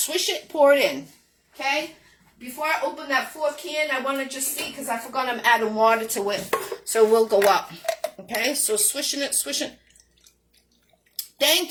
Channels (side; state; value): both; identical; correlation 1.00